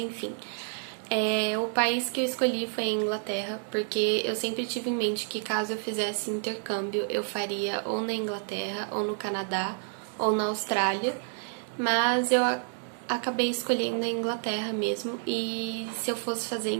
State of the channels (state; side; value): silent; left; 58 dB below the other